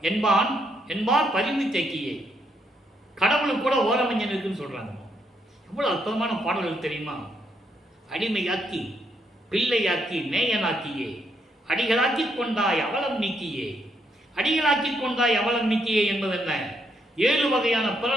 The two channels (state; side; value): normal; both; correlation 0.76